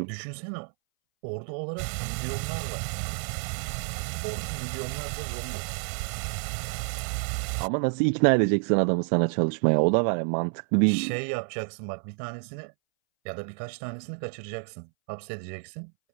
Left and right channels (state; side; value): silent; left; 59 dB below the other